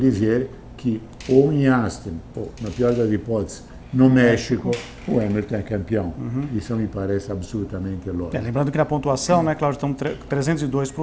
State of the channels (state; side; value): identical; both; correlation 1.00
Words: que ou em Austin, ou na pior das hipóteses, no México, o Hamilton é campeão. Isso me parece absolutamente lógico. Lembrando que na pontuação, né, Cláudio, estão 302 para